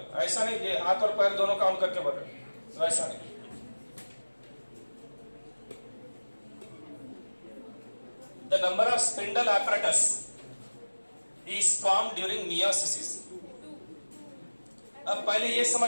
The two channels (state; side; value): inverted; both; correlation -1.00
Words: ऐसा नहीं ये हाथ और पैर दोनों काउंट करके बोल रहे, वैसा नहीं। The number of spindle apparatus is formed during meiosis. अब पहले ये